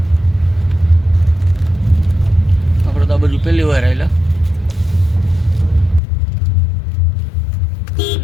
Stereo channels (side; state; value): right; drops out; at 6.0 s